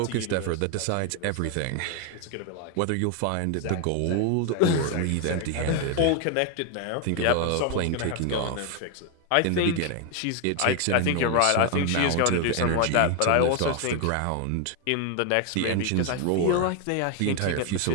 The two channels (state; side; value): different; both; correlation 0.01